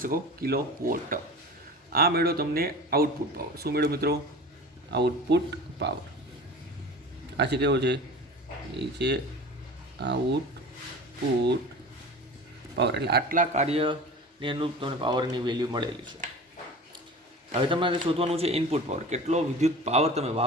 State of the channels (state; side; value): normal; both; correlation 0.36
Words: શકો? Kilo watt. આ મેળો તમને આઉટપુટ પાવર. શું મેળો મિત્રો? Output power. આ છે કેવો છે? એ છે આઉટપુટ પાવર. એટલે આટલા કાર્યને અનુરૂપ તમને પાવરની વેલ્યુ મળેલી છે. હવે તમારે શોધવાનું છે ઇનપુટ પાવર. કેટલો વિદ્યુત પાવર તમે